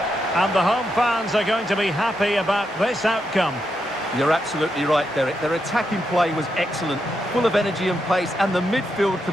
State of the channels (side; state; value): both; normal; correlation 0.83